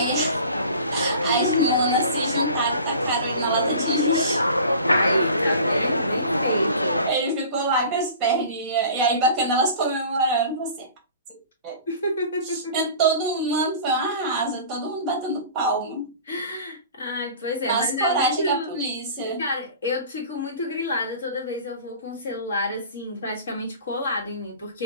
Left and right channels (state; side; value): inverted; both; correlation -0.42